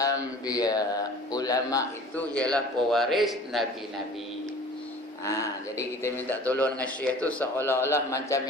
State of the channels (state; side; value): normal; both; correlation 0.45